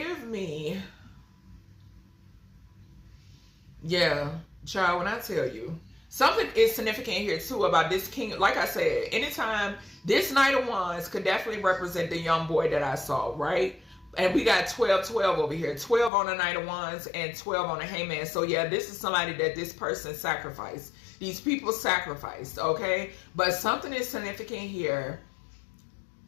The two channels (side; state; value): right; drops out; at 16.1 s